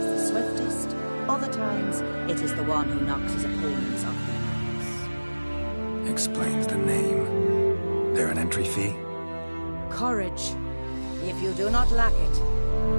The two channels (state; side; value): inverted; both; correlation -1.00